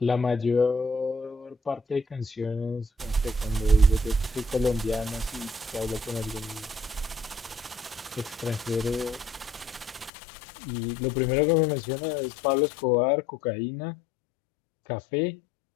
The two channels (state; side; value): drops out; right; at 10.1 s